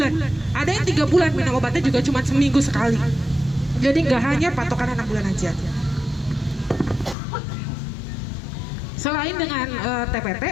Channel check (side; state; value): right; drops out; at 7.2 s